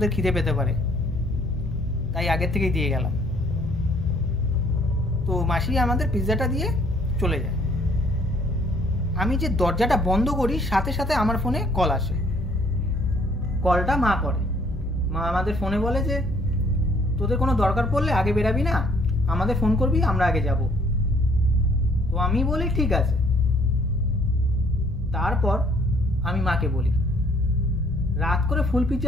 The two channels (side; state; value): both; normal; correlation 0.62